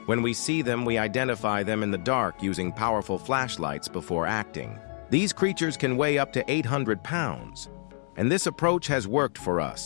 When we see them, we identify them in the dark using powerful flashlights before acting. These creatures can weigh up to 800 pounds, and this approach has worked for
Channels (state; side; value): silent; right; 60 dB below the other